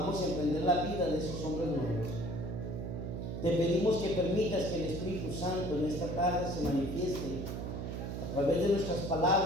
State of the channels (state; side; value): noise; right; hum, 4 dB below the sound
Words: emprender la vida de esos hombres nuevos. Te pedimos que permitas que el Espíritu Santo en esta tarde se manifieste a través de nuestras